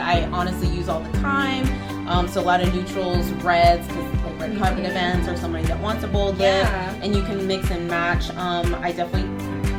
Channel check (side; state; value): both; identical; correlation 1.00